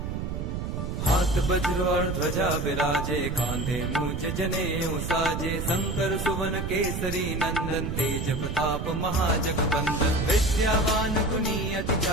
हाथ वज्र और ध्वजा विराजे, कांधे मूंज जनेऊ साजे। शंकर सुवन केसरी नंदन, तेज प्रताप महाजगबंदन। विद्यावान गुणी अति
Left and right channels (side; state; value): right; noise; rumble, 3 dB below the sound